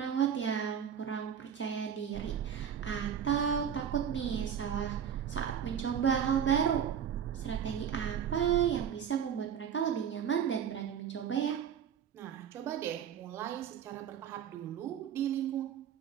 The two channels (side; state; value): left; quieter; 8.3 dB